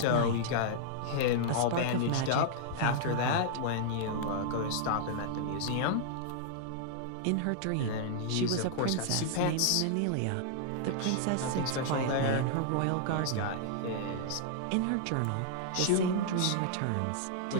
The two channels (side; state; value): both; different; correlation -0.01